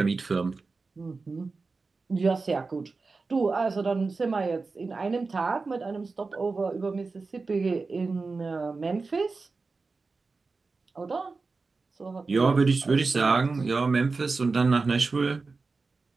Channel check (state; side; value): quieter; left; 4.1 dB